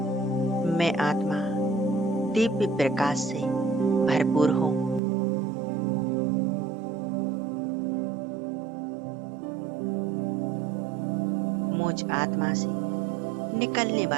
मैं आत्मा दिव्य प्रकाश से भरपूर हूँ। मुझ आत्मा से निकलने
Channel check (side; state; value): left; drops out; at 5.0 s